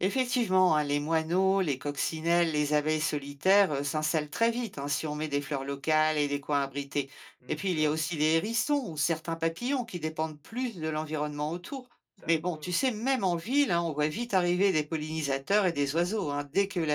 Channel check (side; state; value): both; identical; correlation 1.00